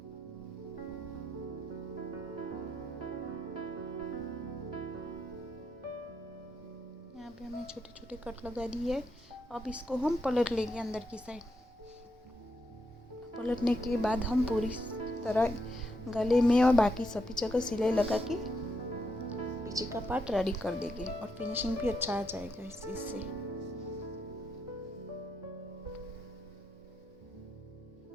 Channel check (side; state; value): both; normal; correlation 0.80